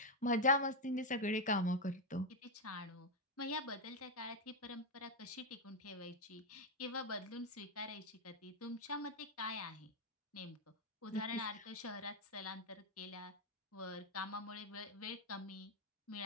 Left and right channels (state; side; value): normal; both; correlation 0.03